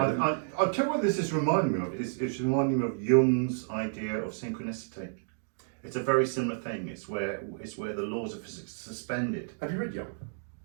I'll tell you what this is reminding me of. It's reminding me of Jung's idea of synchronicity. It's a very similar thing. It's where the laws of physics are suspended. Have you read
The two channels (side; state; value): left; silent; digital silence